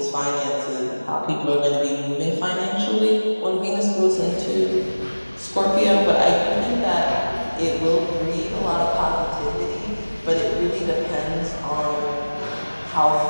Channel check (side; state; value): both; inverted; correlation -1.00